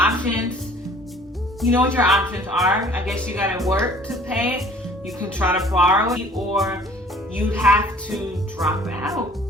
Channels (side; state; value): both; normal; correlation 0.52